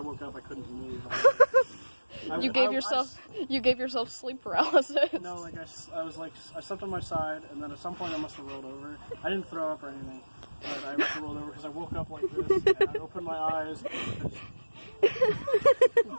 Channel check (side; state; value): both; inverted; correlation -1.00